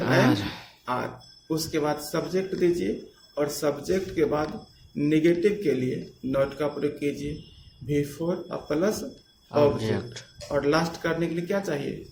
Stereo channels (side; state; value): both; identical; correlation 1.00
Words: आर। उसके बाद सब्जेक्ट दीजिए और सब्जेक्ट के बाद नेगेटिव के लिए नॉट का प्रयोग कीजिए, बिफोर प्लस ऑब्जेक्ट। और लास्ट करने के लिए क्या चाहिए,